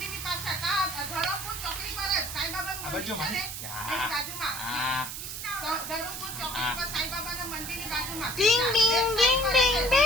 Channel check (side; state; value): right; noise; hiss, 7 dB below the sound